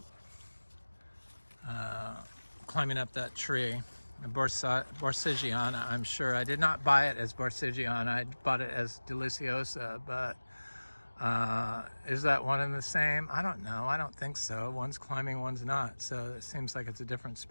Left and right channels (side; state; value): both; inverted; correlation -1.00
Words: climbing up that tree. Borsigiana, I'm sure. I did not buy it as Borsigiana. I bought it as Deliciosa, but is that one and the same? I don't know. I don't think so. One's climbing, one's not. So it seems like it's a different